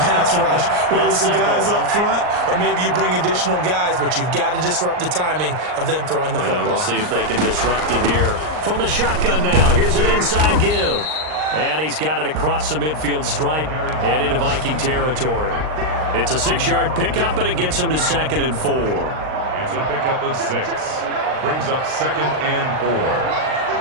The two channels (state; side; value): late; left; 39 ms